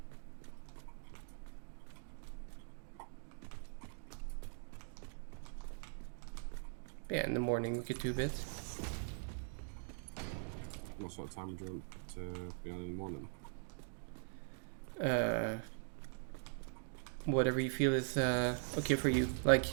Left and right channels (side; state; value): left; silent; digital silence